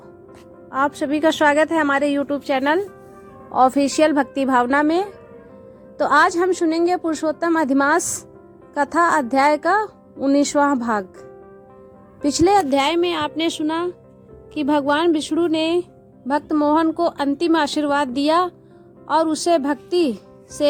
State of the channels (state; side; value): identical; both; correlation 1.00